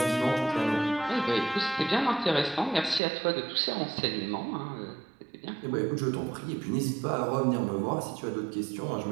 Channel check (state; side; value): drops out; left; at 3.0 s